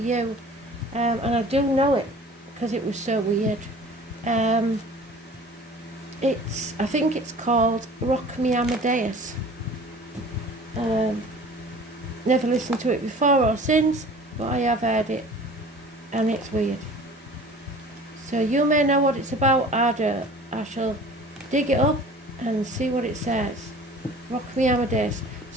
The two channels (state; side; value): normal; both; correlation 0.45